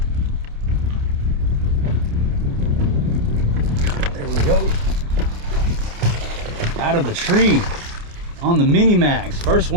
There we go. Out of the tree. On the Mini Max, first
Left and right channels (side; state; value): left; late; 29 ms